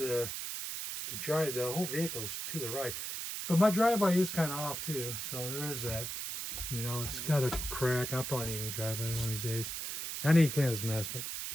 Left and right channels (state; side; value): noise; right; hiss, 5 dB below the sound